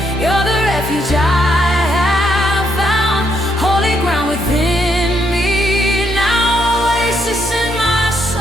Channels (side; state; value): both; normal; correlation 0.75